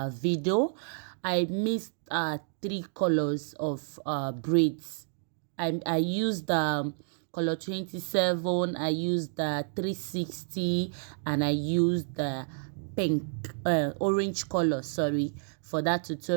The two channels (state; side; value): silent; left; digital silence